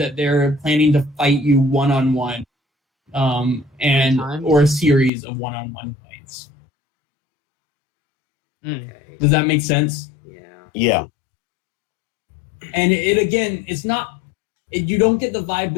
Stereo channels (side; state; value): right; drops out; at 5.1 s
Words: they're planning to fight you one-on-one, or a series of one-on-one fights. Okay. Does that make sense? Yeah. And it's not. You don't get the vibe